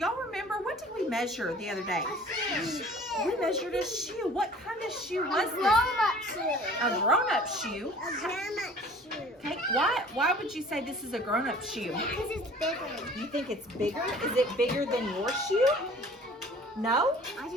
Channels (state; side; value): normal; both; correlation 0.49